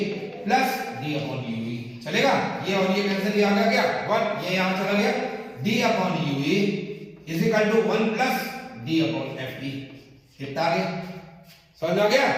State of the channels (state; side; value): identical; both; correlation 1.00